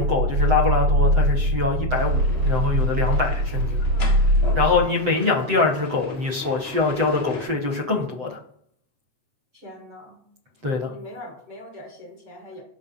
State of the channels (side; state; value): left; late; 7.8 ms